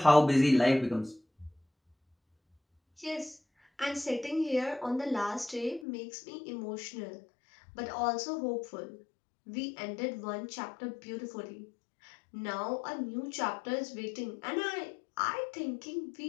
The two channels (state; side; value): drops out; right; at 5.9 s